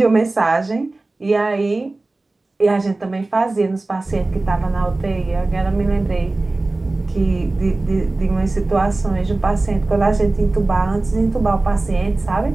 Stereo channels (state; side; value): quieter; left; 3.1 dB